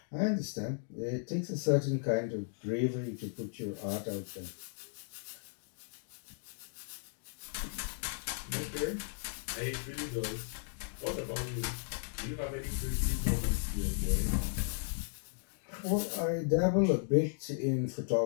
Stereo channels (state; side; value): silent; right; digital silence